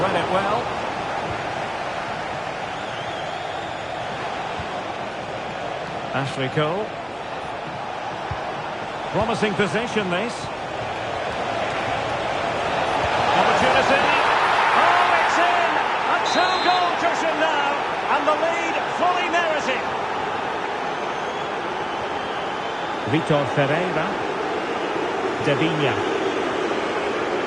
it well. Ashley Cole. Promising position, this. Opportunity. Oh, it's in! A two-goal cushion now, and the lead fully merited. Vitor Ferreira. Devinia.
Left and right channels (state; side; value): identical; both; correlation 1.00